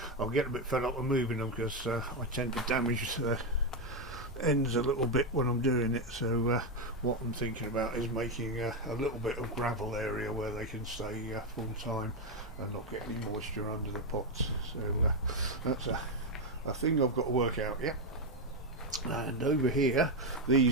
I'll get a bit fed up with moving them, because I tend to damage the ends a little bit when I'm doing it. So what I'm thinking about is making a little bit of gravel area where they can stay full time and not get any moisture under the pots. So that's a thing I've got to work out yet. And over here,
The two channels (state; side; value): normal; both; correlation 0.06